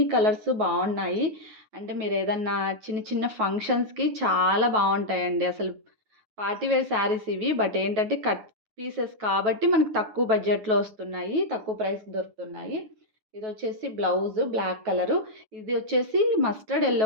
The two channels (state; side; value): late; left; 9.2 ms